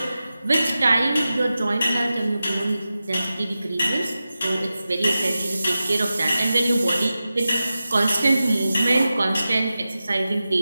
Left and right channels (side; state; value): both; inverted; correlation -0.93